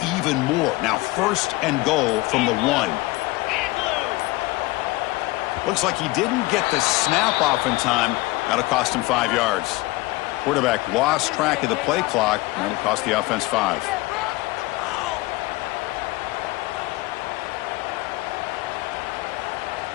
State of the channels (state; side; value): quieter; right; 20.9 dB